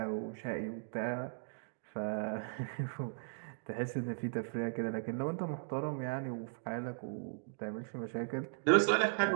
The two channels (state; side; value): silent; left; digital silence